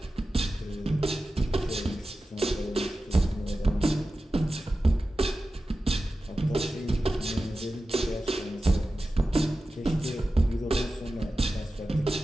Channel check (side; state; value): both; normal; correlation 0.94